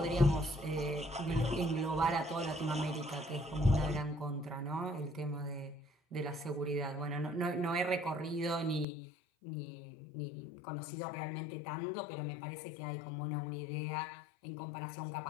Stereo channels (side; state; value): right; drops out; at 8.8 s